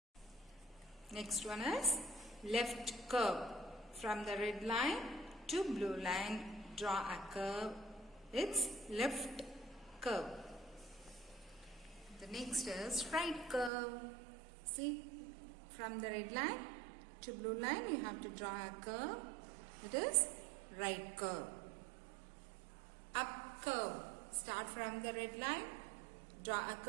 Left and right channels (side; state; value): left; drops out; at 13.7 s